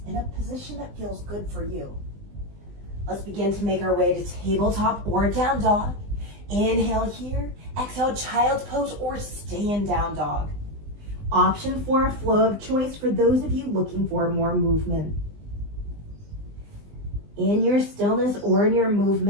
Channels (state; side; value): late; left; 20 ms